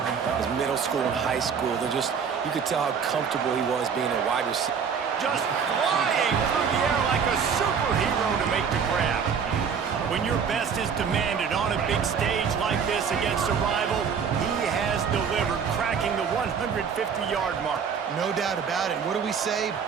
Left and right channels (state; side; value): quieter; left; 6.6 dB